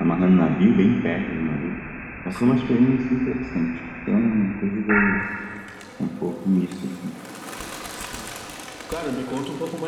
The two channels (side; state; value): both; identical; correlation 1.00